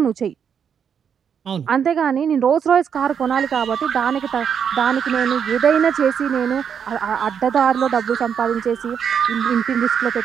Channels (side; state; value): left; quieter; 7.6 dB